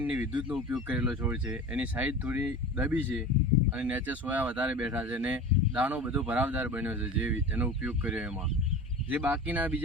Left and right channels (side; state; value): both; normal; correlation 0.35